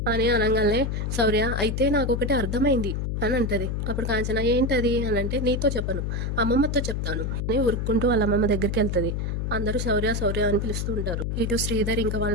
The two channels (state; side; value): noise; left; hum, 1 dB below the sound